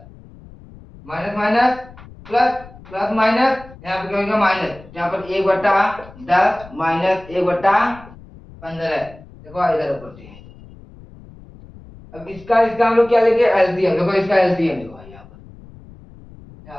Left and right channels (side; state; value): left; noise; rumble, 20 dB below the sound